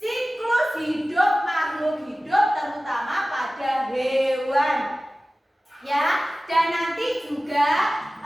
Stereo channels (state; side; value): normal; both; correlation 0.96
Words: siklus hidup makhluk hidup, terutama pada hewan. Ya, dan nanti juga